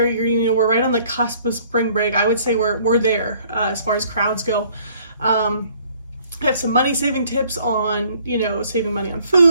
We're right on the cusp of spring break. I would say we're there as far as crowds go. I have some money saving tips on, saving money on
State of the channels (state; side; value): inverted; both; correlation -0.59